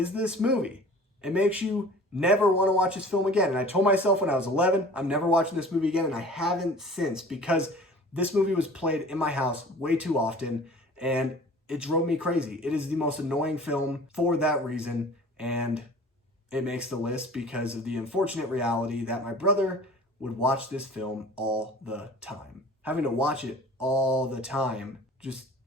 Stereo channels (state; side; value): normal; both; correlation 0.45